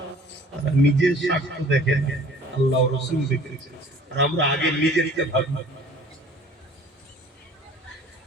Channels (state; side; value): normal; both; correlation 0.50